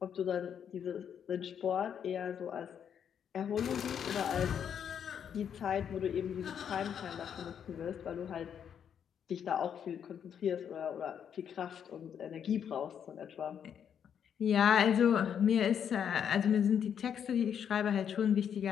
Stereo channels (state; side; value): quieter; right; 8.3 dB